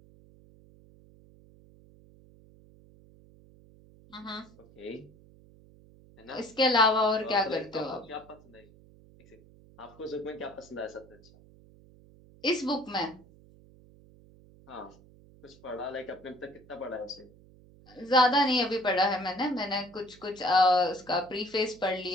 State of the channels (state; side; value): noise; right; hum, 25 dB below the sound